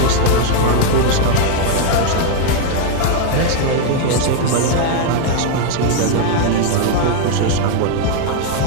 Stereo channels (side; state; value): both; different; correlation 0.00